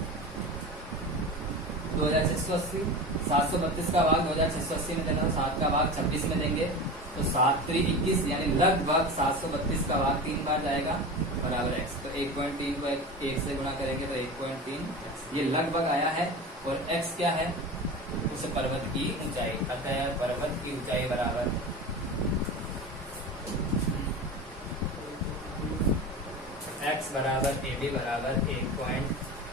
2680, 732 का भाग 2680 में देना, 7 का भाग 26 में देंगे तो 7 × 21 यानी लगभग 732 का भाग 3 बार जाएगा बराबर x। तो 1.3 को 1 से गुणा करेंगे तो 1.3 ये लगभग आया है। और x क्या है, उस पर्वत की ऊंचाई, अतः पर्वत की ऊंचाई बराबर x बराबर AB बराबर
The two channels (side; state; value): both; normal; correlation 0.29